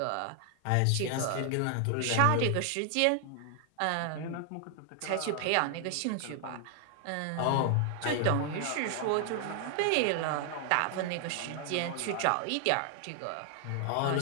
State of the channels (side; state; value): both; different; correlation 0.00